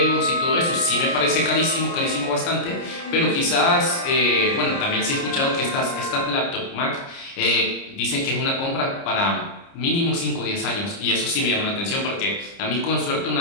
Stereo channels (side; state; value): right; late; 29 ms